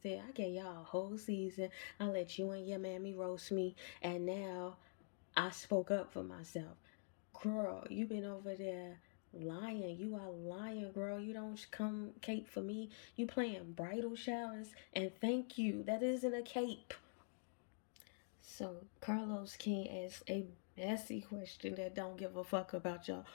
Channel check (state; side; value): silent; right; digital silence